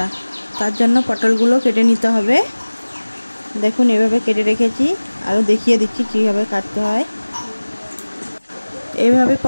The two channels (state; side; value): inverted; both; correlation -1.00